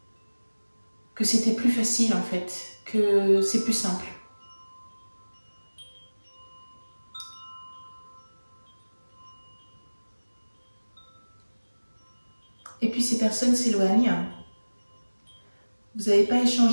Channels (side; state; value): both; inverted; correlation -1.00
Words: que c'était plus facile en fait, que c'est plus simple. Et puis ces personnes s'éloignent. Vous n'avez pas